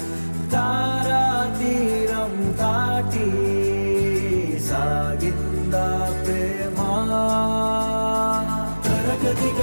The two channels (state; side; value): inverted; both; correlation -1.00